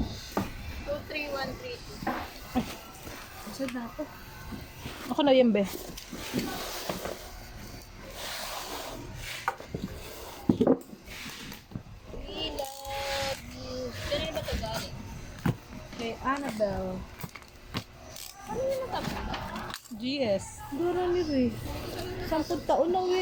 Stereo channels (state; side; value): identical; both; correlation 1.00